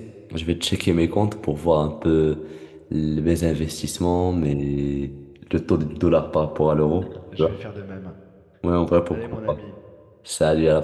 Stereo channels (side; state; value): both; identical; correlation 1.00